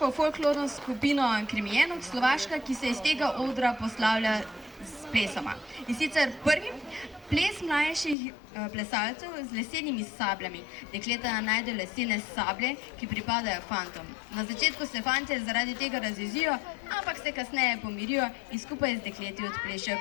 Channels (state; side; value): drops out; right; at 8.2 s